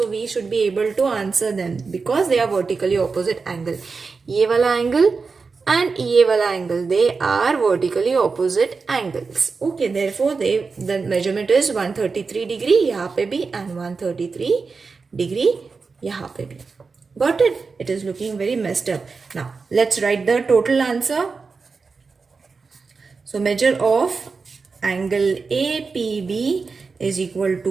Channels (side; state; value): left; quieter; 4.6 dB